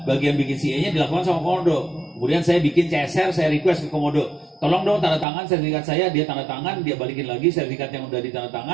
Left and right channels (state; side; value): drops out; left; at 5.2 s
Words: bagian bikin CA-nya dilakukan sama Komodo. Kemudian saya bikin CSR, saya request ke Komodo. Tolong dong tanda tangan sertifikat saya, dia tanda tangan, dia balikin lagi sertifikat yang udah ditanda